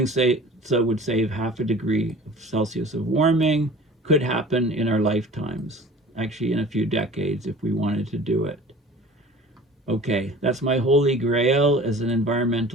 so would save 0.5 degree Celsius of warming, could happen in our lifetimes, actually in a few decades if we wanted to do it. Okay, that's my holy grail as an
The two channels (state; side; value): normal; both; correlation 0.43